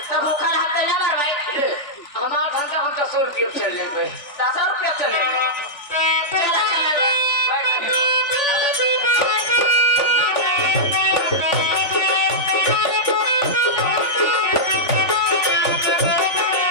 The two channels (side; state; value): right; late; 3.4 ms